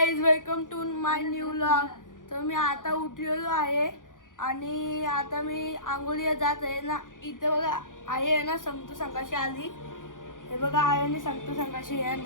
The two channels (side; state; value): right; late; 0.88 ms